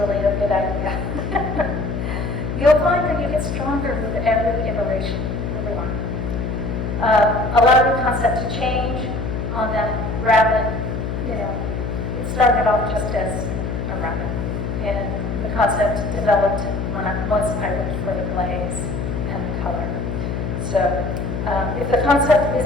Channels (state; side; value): noise; left; hum, 3 dB below the sound